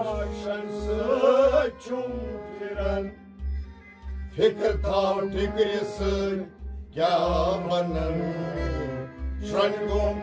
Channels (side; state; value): both; identical; correlation 1.00